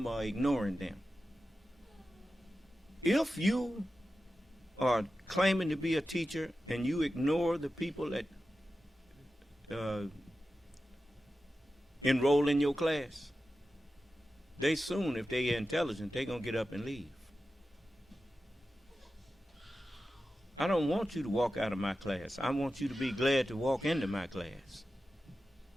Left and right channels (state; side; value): normal; both; correlation 0.93